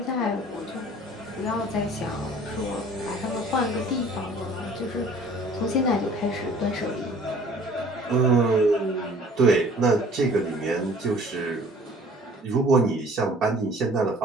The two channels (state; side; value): normal; both; correlation 0.51